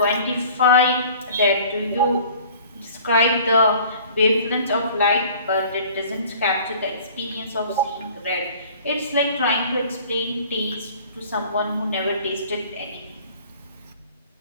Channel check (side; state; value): both; inverted; correlation -0.49